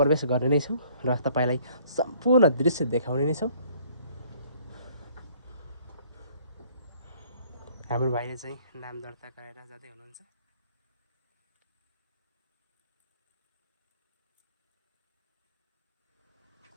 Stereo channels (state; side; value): inverted; both; correlation -0.59